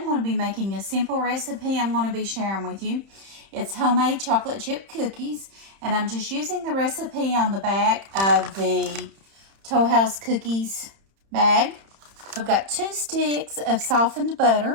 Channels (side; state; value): left; late; 31 ms